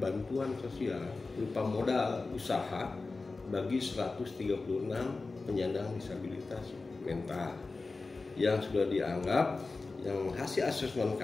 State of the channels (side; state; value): right; quieter; 3.8 dB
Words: sosial berupa modal usaha bagi 136 penyandang disabilitas mental yang sudah dianggap, yang hasil asesmen